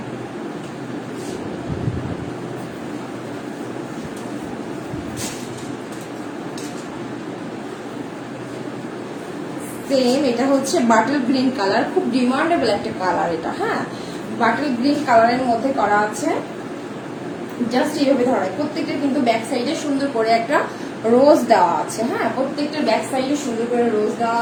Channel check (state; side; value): identical; both; correlation 1.00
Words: সেম এটা হচ্ছে বাটল গ্রিন কালার, খুব ডিমান্ডেবল একটা কালার এটা। হ্যাঁ, বাটল গ্রিন কালারের মধ্যে করা আছে, জাস্ট এইভাবে ধরায়। প্রত্যেকটা কিন্তু ব্যাক সাইডে সুন্দর করে একটা রোজ দেওয়া আছে। হ্যাঁ, প্রত্যেকটা ব্যাক সাইডে সুন্দর করে রোজ দেওয়া